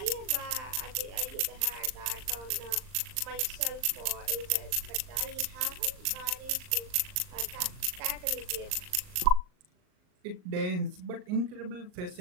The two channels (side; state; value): left; late; 39 ms